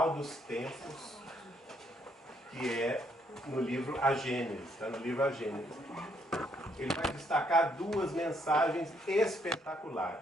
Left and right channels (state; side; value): normal; both; correlation 0.71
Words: dos Tempos, que é no livro A Gênese, está no livro A Gênese. Ele vai destacar duas mensagens